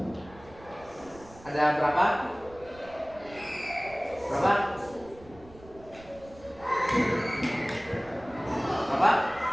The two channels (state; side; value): noise; right; rumble, 22 dB below the sound